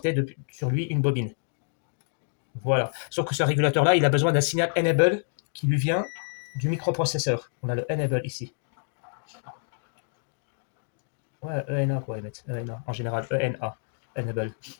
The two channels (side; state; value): right; silent; digital silence